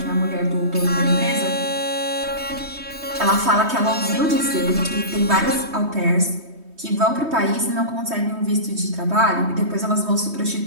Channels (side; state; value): left; late; 3.2 ms